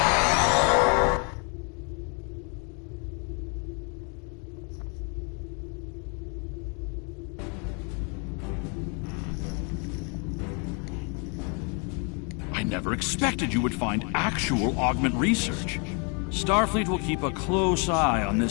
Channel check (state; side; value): quieter; right; 35.7 dB